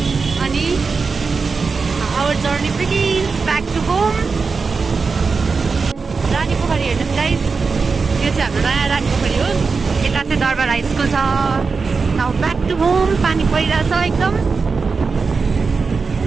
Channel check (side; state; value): left; quieter; 4.7 dB